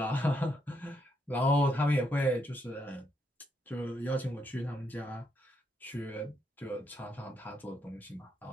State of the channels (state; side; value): normal; both; correlation 0.77